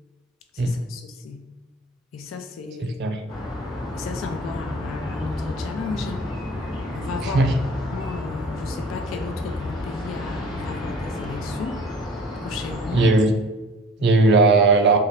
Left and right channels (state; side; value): normal; both; correlation 0.43